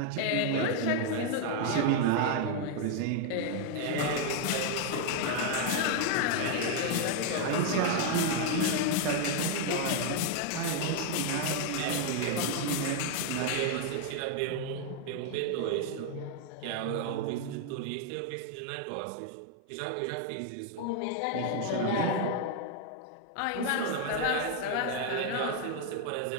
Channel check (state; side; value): different; both; correlation 0.00